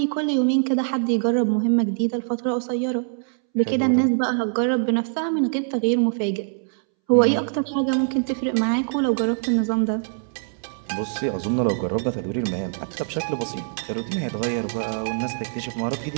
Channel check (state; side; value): silent; left; 63 dB below the other